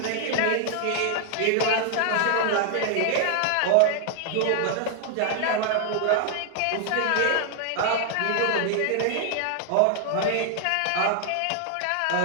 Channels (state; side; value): different; both; correlation 0.00